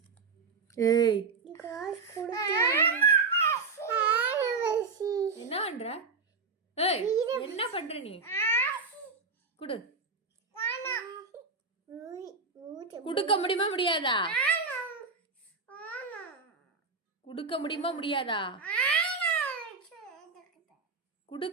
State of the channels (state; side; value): quieter; left; 4.4 dB